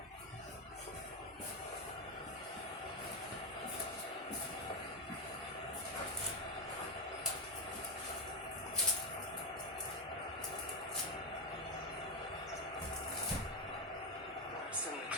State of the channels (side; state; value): both; normal; correlation 0.08